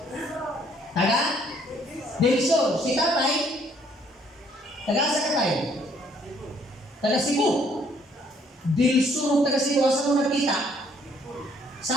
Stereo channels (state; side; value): normal; both; correlation 0.64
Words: Taga? Delso, si tatay, taga-asa ka tayo? Taga Cebu. Delso, taga Cebu, asa mo nakita?